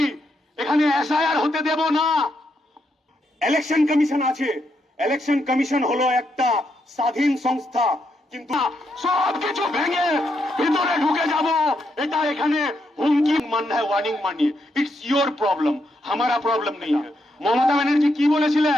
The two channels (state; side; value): normal; both; correlation 0.80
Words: এখানে এসআইআর হতে দেব না। ইলেকশন কমিশন আছে, ইলেকশন কমিশন হলো একটা স্বাধীন সংস্থা, কিন্তু সবকিছু ভেঙে ভিতরে ঢুকে যাব এটা এখানে হুমকি মাননা है, वार्निंग मानिए। इट्स योर प्रॉब्लम, हमारा प्रॉब्लम नहीं है। মমতা ব্যানার্জি কি